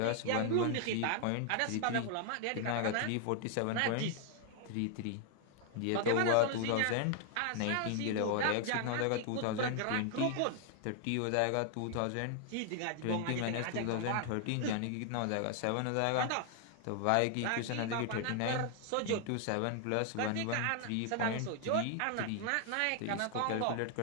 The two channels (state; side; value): different; both; correlation 0.00